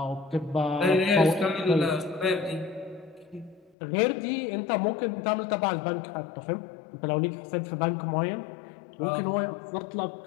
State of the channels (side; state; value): right; drops out; at 3.7 s